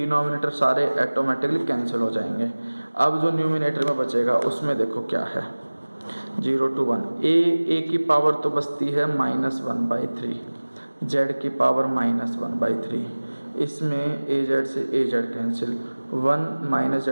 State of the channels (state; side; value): inverted; both; correlation -1.00